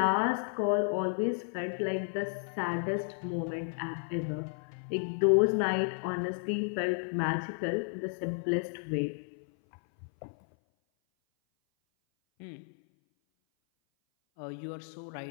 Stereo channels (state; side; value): silent; right; 56 dB below the other